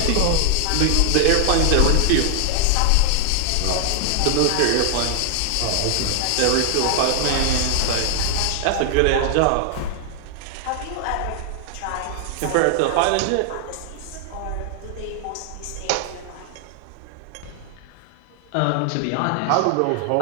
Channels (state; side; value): different; both; correlation 0.00